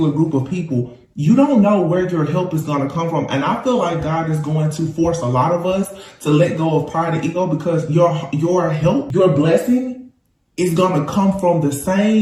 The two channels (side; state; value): both; identical; correlation 1.00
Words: group of people. You don't know where your help is going to come from. And I feel like God is going to force a lot of us to let go of pride and ego, because your help, your blessing is going to come from the